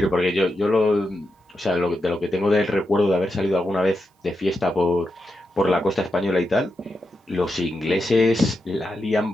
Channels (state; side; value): normal; both; correlation 0.86